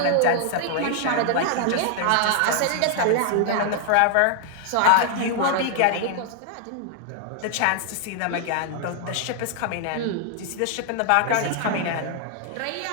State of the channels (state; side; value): different; both; correlation 0.00